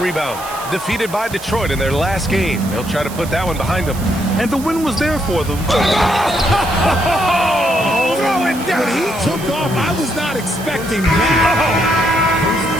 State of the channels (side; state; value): right; noise; hiss, 15 dB below the sound